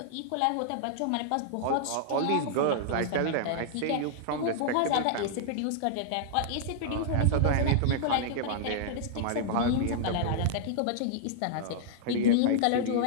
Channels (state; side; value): different; both; correlation -0.01